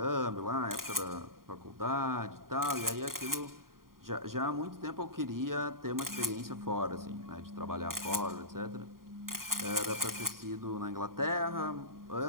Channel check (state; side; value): late; left; 0.91 ms